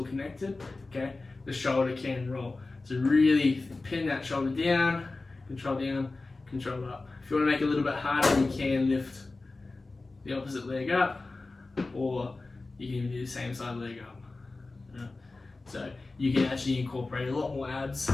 connected, okay, the shoulder can roll. So really pin that shoulder down, control up. If you want to make it a little bit harder, you can lift the opposite leg up, or you can even do the same side leg up. Yeah. So you can actually incorporate a lot more abs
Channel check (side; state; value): right; quieter; 3.4 dB